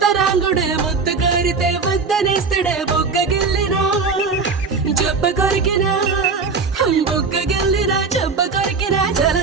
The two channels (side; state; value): left; quieter; 4.7 dB